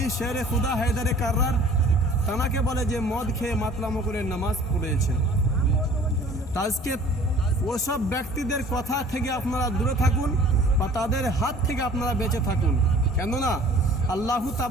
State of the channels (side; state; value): both; normal; correlation 0.50